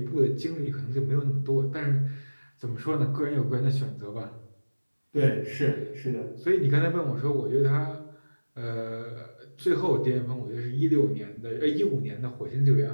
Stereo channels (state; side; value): inverted; both; correlation -1.00